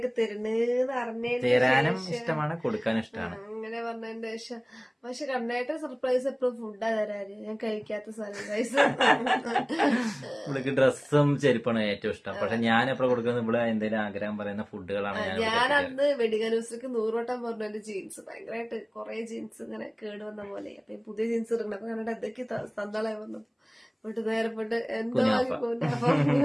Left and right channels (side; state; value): both; identical; correlation 1.00